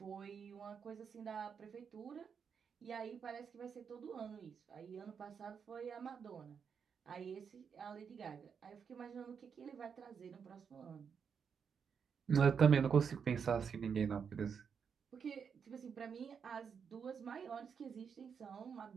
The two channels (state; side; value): quieter; left; 6.7 dB